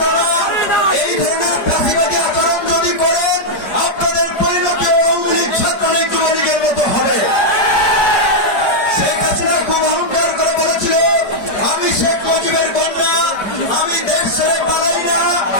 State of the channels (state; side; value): late; right; 4.9 ms